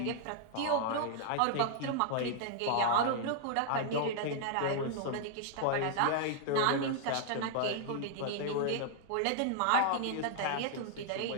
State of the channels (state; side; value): different; both; correlation -0.01